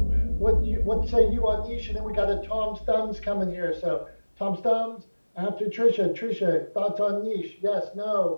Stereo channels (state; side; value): inverted; both; correlation -1.00